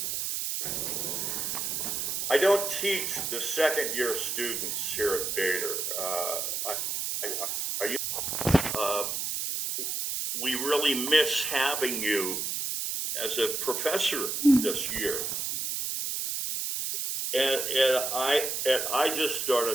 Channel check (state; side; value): noise; right; hiss, 2 dB below the sound